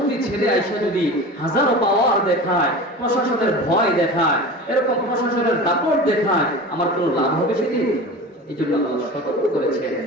ছেলে আইসা যদি হাজারো পাওয়ার দেখায়, প্রশাসনের ভয় দেখায়, এরকম প্রশাসনের দাপট দেখায়, আমার কোনো লাভ হবে সেদিন? এই জন্য আল্লাহ সতর্ক করেছেন,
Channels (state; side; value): normal; both; correlation 0.34